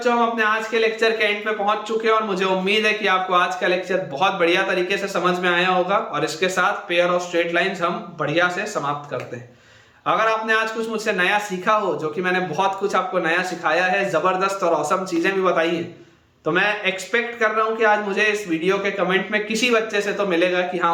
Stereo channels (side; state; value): both; identical; correlation 1.00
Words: हम अपने आज के लेक्चर के एंड पे पहुंच चुके हैं और मुझे उम्मीद है कि आपको आज का लेक्चर बहुत बढ़िया तरीके से समझ में आया होगा और इसके साथ पेयर ऑफ स्ट्रेट लाइंस हम बढ़िया से समाप्त करते हैं। अगर आपने आज कुछ मुझसे नया सीखा हो, जो कि मैंने बहुत कुछ आपको नया सिखाया है, जबरदस्त और औसम चीजें भी बताई है, तो मैं एक्सपेक्ट कर रहा हूं कि आज मुझे इस वीडियो के कमेंट में किसी बच्चे से तो मिलेगा कि